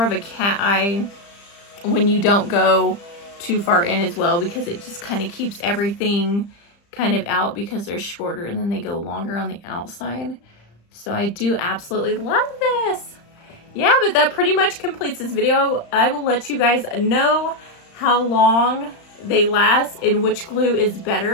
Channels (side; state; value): right; late; 35 ms